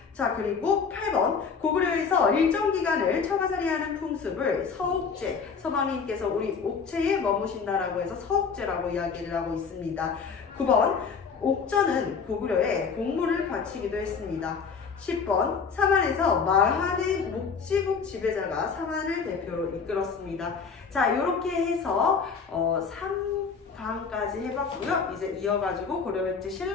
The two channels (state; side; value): quieter; right; 5.6 dB